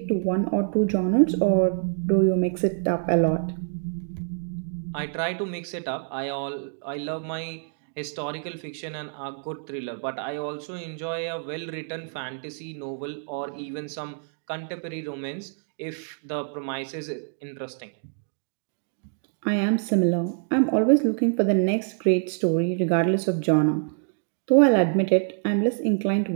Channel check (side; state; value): left; silent; digital silence